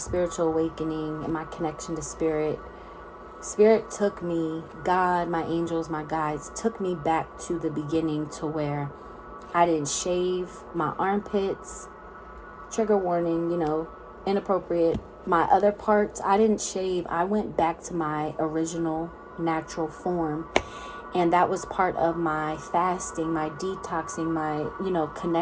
awakening and my connection to spirit took me, God, my angels, my guides, took me back to the beginning, to where I didn't shave my armpits, trigger warning, inappropriate. My other parts, I didn't shave. I went back to my original natural form. And that was part of my fasting, my detoxing, my,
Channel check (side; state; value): both; identical; correlation 1.00